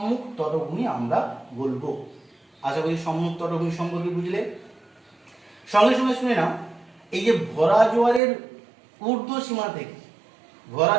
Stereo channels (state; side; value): drops out; left; at 8.2 s